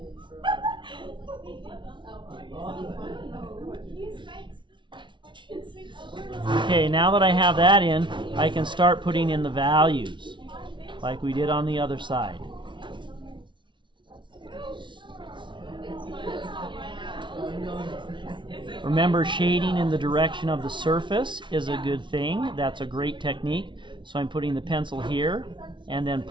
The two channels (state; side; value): late; left; 0.24 ms